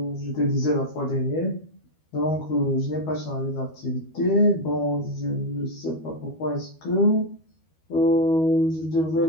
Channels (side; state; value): right; late; 12 ms